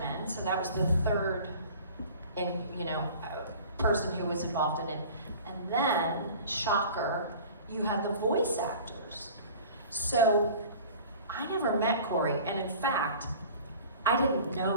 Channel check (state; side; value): inverted; both; correlation -0.43